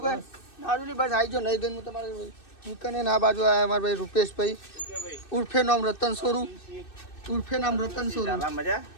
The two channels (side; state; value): right; late; 2.6 ms